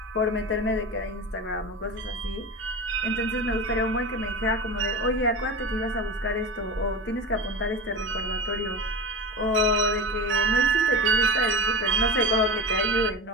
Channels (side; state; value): both; normal; correlation 0.27